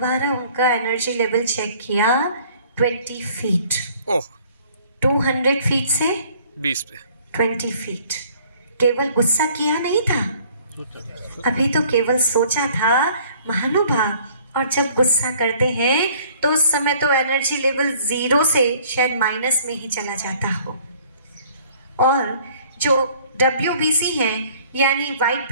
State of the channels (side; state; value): both; inverted; correlation -0.56